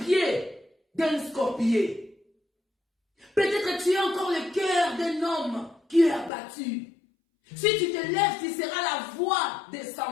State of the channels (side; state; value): right; drops out; at 6.3 s